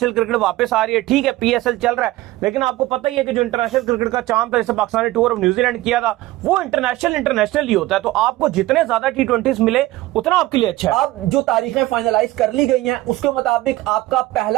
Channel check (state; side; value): quieter; left; 17.5 dB